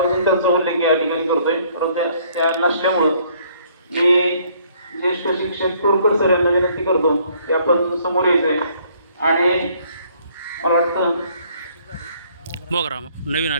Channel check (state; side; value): inverted; both; correlation -0.62